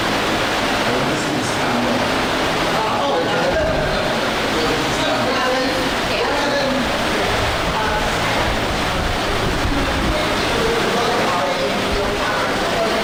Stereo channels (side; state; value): both; identical; correlation 1.00